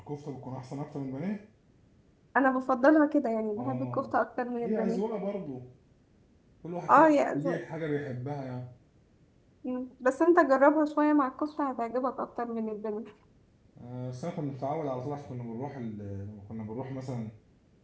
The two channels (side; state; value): both; identical; correlation 1.00